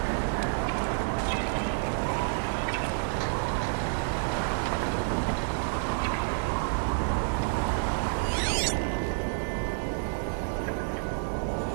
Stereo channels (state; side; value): silent; left; 58 dB below the other